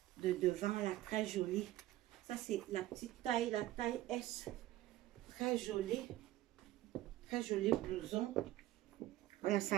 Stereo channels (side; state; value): left; quieter; 15.4 dB